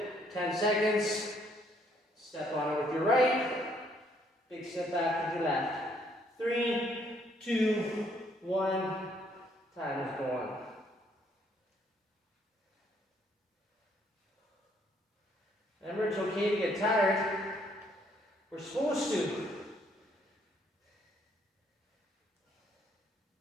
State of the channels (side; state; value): both; normal; correlation 0.67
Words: 10 seconds. Step on it with your right. Big step back with your left. 3, 2, 1. Time is going. Remember, it's okay to get tired. We're supposed to.